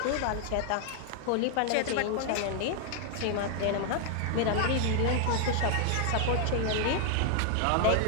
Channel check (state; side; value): different; both; correlation 0.00